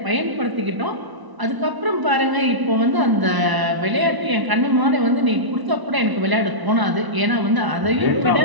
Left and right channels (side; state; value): left; late; 1.0 ms